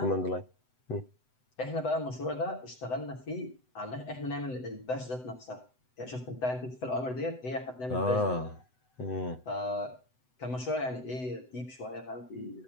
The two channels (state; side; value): late; right; 7.9 ms